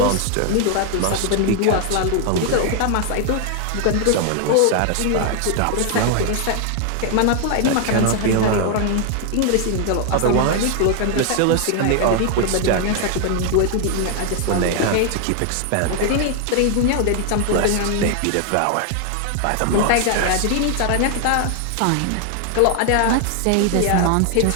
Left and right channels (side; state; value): both; different; correlation 0.00